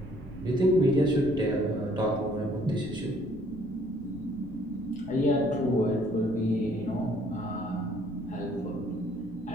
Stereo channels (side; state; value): left; noise; rumble, 17 dB below the sound